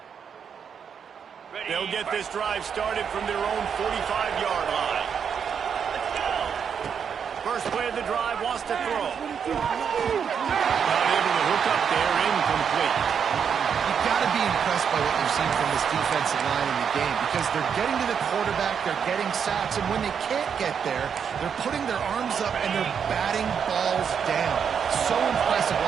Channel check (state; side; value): quieter; left; 7.2 dB